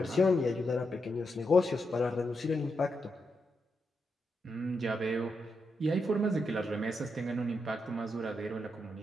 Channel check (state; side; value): normal; both; correlation 0.84